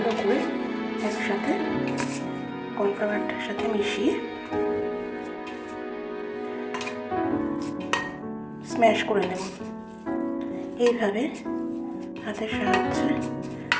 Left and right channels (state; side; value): identical; both; correlation 1.00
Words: করে একসাথে কর্নফ্লাওয়ারটার সাথে মিশিয়ে স্ম্যাশ করে নেব। এইভাবে হাতের সাহায্যে